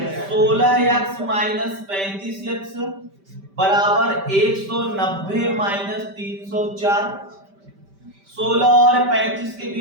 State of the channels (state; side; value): late; left; 5.1 ms